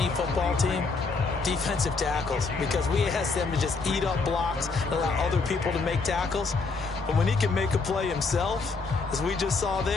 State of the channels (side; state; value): right; quieter; 4.2 dB